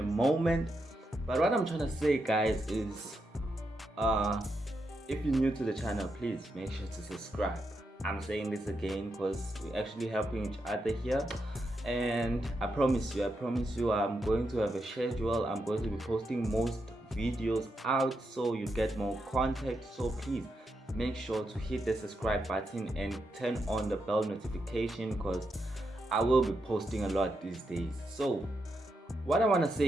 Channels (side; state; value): both; normal; correlation 0.84